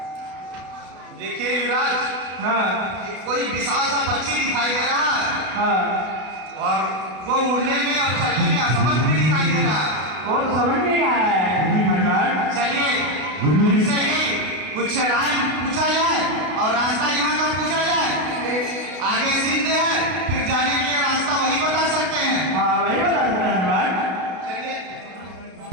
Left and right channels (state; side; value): late; left; 32 ms